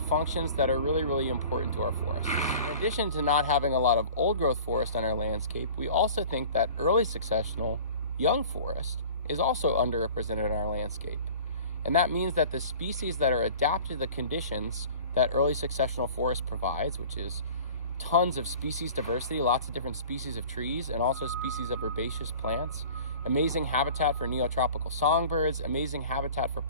functions that are really, really important to our forests. In addition to not having a lot of old growth forest on our landscape, we also think that early successional young forest is also underrepresented in our landscape. And that means that the species that are adapted to the conditions that early successional forest provides, which is tons of species diversity, lots of different species of trees, and also species of herbaceous plants, amazing habitat for neotropical songbirds, amazing habitat for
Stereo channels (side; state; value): both; inverted; correlation -0.44